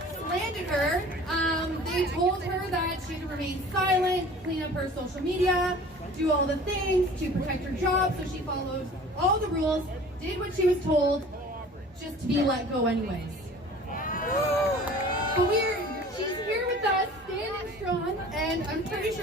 slandered her, they told her that she had to remain silent, clean up her social media, do all the things to protect her job, so she followed all the rules, did what she was told, just to be let go anyways. But she's here with us, standing strong, and I'm pretty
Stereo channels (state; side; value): normal; both; correlation 0.45